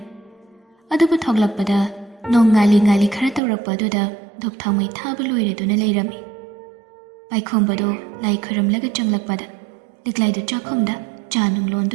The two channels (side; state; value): left; drops out; at 3.4 s